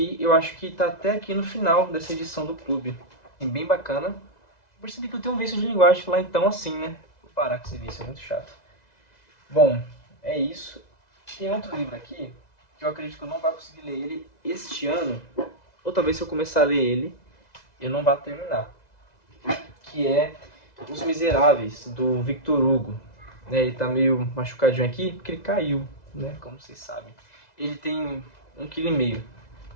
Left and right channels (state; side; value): late; right; 2.0 ms